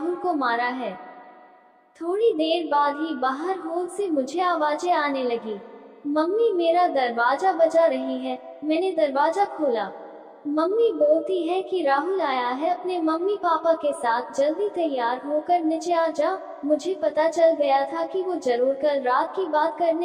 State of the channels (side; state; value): both; identical; correlation 1.00